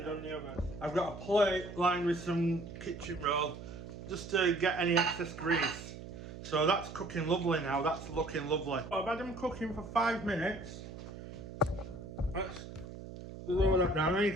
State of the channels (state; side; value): noise; right; hum, 12 dB below the sound